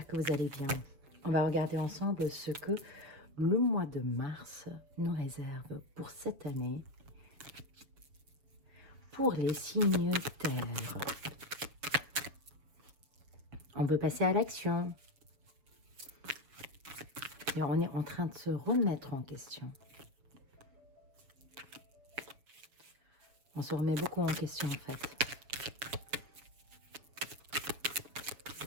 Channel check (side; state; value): left; late; 7.2 ms